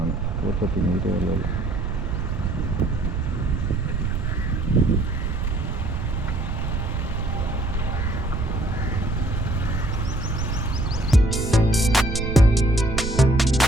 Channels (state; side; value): noise; right; rumble, 1 dB below the sound